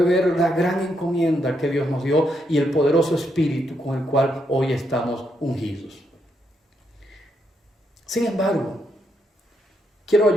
ver la gran encomienda que Dios nos dio y el poderoso espíritu con el cual hoy estamos ungidos. Sin embargo, quiero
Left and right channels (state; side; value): normal; both; correlation 0.79